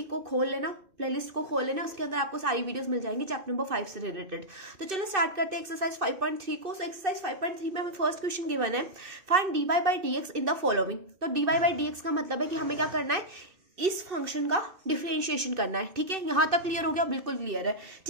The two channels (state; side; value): late; left; 2.6 ms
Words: को खोल लेना, प्लेलिस्ट को खोल लेना। उसके अंदर आपको सारी वीडियोस मिल जाएंगी चैप्टर नंबर 5 से रिलेटेड। तो चलो स्टार्ट करते हैं एक्सरसाइज 5.3 को। सो एक्सरसाइज 5.3 में हमें फर्स्ट क्वेश्चन गिवन है, find dy by dx in the following. तो dy by dx का मतलब है कि हमें क्या करना है, इस फंक्शन का डिफरेंशिएशन करना है। ठीक है, यहां तक क्लियर हो गया? बिल्कुल क्लियर है।